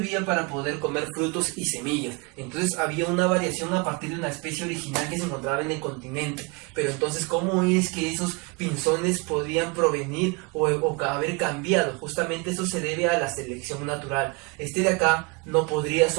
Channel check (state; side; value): quieter; left; 28.8 dB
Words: para poder comer frutos y semillas. Entonces había una variación a partir de una especie original que se encontraba en el continente. Pero entonces, ¿cómo es que esos pinzones podían provenir o haber cambiado? Justamente eso se debe a la selección natural. Este de acá no podría